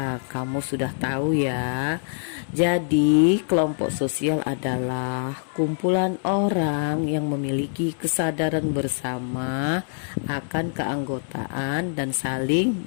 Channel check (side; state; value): right; silent; 62 dB below the other